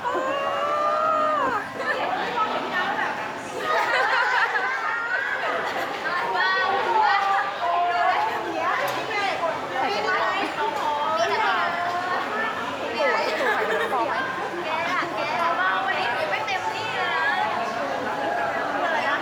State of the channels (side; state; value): both; identical; correlation 1.00